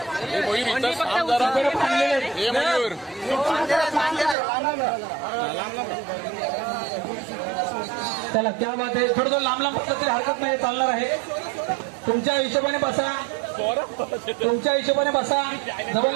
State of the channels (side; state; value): left; drops out; at 4.4 s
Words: चला, क्या बात आहे. थोडं लांब लांब बसलं तरी हरकत नाही, चालणार आहे. तुमच्या हिशोबाने बसा, तुमच्या हिशोबाने बसा,